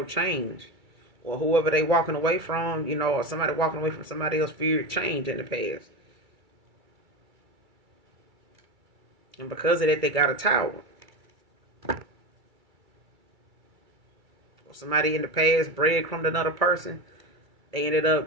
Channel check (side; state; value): left; late; 2.3 ms